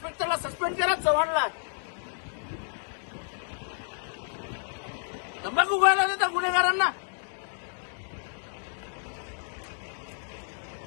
सस्पेंड करा, चव्हाणला. तंबाखू खायला देता गुन्हेगारांना.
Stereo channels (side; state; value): right; silent; digital silence